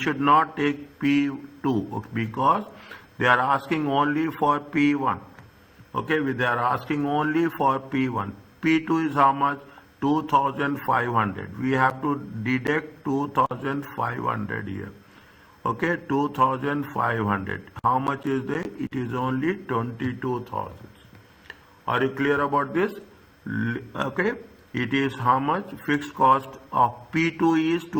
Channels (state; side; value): identical; both; correlation 1.00